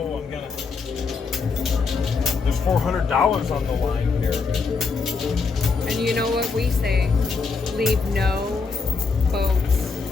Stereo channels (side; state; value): right; quieter; 4.7 dB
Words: I'm gonna. There's $400 on the line here. And you know what we say? Leave no boats